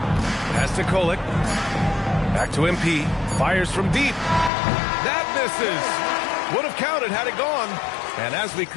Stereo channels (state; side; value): drops out; right; at 4.5 s